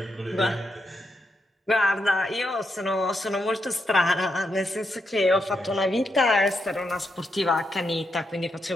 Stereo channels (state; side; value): normal; both; correlation 0.82